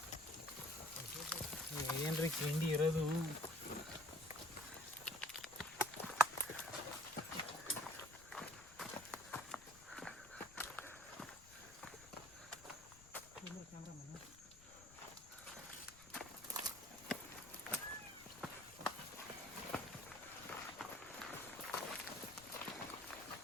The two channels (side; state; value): left; noise; rumble, 21 dB below the sound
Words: ಏನ್ರಿ ಕಿಂಡಿ ಇರೋದು.